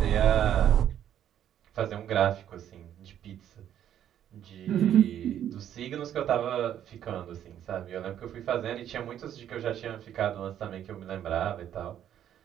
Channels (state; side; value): quieter; left; 10.5 dB